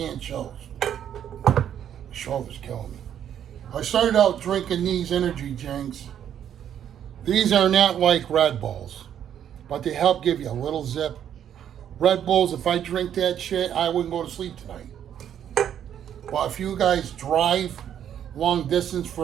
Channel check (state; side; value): quieter; left; 9.7 dB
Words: shells. My shoulder's killing me. I started out drinking these energy drinks. These are not like Red Bulls, but they help give you a little zip. Red Bulls, if I drink that shit, I wouldn't go to sleep tonight. Well, if you guys drive long distance,